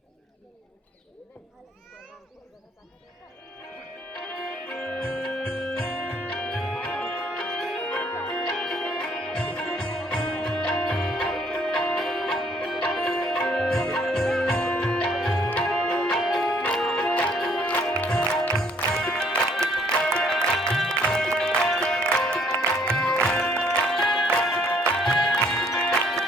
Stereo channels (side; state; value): both; normal; correlation 0.63